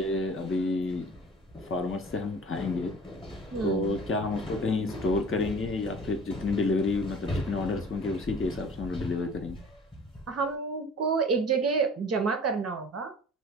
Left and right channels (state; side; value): normal; both; correlation 0.44